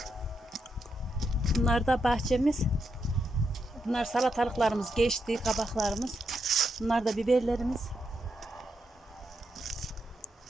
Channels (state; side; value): normal; both; correlation 0.82